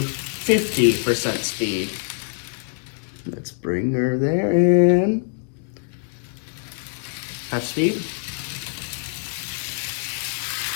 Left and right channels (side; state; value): right; silent; 63 dB below the other